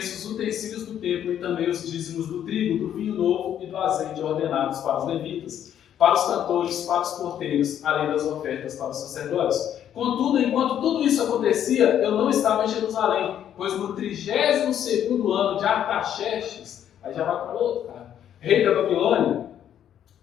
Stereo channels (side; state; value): right; quieter; 10.1 dB